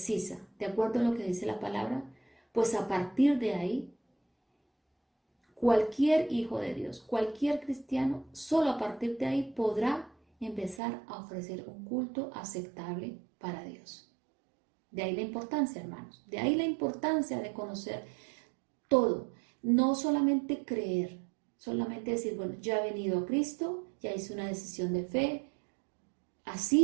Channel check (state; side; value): drops out; left; at 10.8 s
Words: de acuerdo a lo que dice la palabra, pues a partir de ahí, cualquier hijo de Dios, cualquier cristiano, solo a partir de ahí podrá empezar a ofrecer un culto aceptable para Dios. De ahí la importancia, hermanos, de ahí la importancia de conocer todo, no solamente creer, solamente decir, bueno, ya he venido a Cristo, ya hice una decisión de fe,